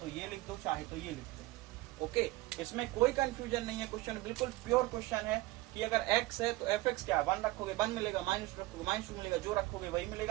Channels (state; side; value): quieter; left; 19.5 dB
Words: ये लिख दो, चाहे तो ये लिख दो। ओके, इसमें कोई कंफ्यूजन नहीं है, क्वेश्चन बिल्कुल प्योर क्वेश्चन है कि अगर x है तो fx क्या है? 1 रखोगे 1 मिलेगा, माइनस रखोगे -2 मिलेगा, जो रखोगे वही